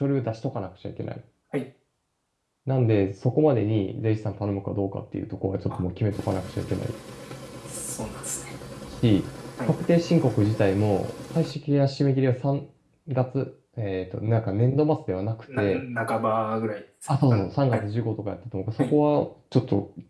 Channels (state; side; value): identical; both; correlation 1.00